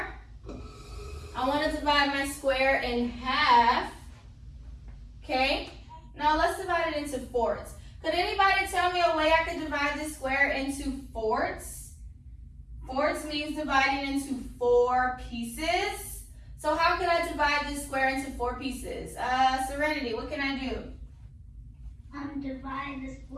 I want to divide my square in half. Okay? Now let's divide it into fourths. Could anybody tell me a way I could divide this square into fourths? Fourths means dividing into 4 pieces. So how could I divide this square into 4 pieces? Serenity, what can I do? Divide the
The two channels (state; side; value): identical; both; correlation 1.00